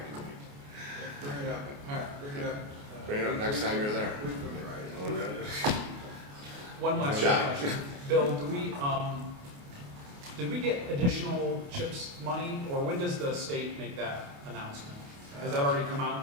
committee. Bring it up, all right, bring it up. Bring it up next time you're there. Week from Friday. One last John. question. Bill, did we get additional CHIPS money, or when does the state make that announcement? Has that already come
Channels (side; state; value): left; late; 28 ms